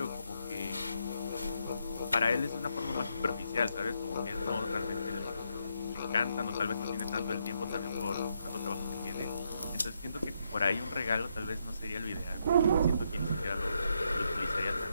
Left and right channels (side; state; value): both; inverted; correlation -0.77